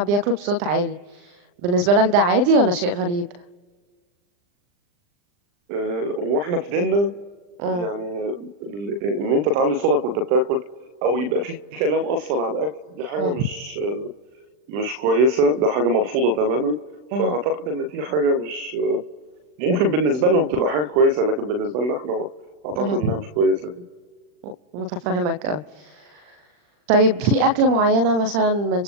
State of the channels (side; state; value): left; late; 40 ms